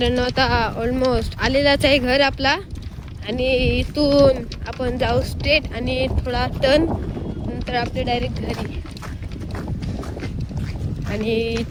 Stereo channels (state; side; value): identical; both; correlation 1.00